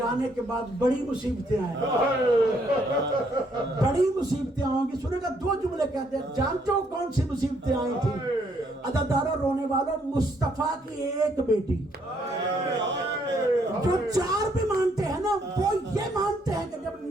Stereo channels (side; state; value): both; normal; correlation 0.70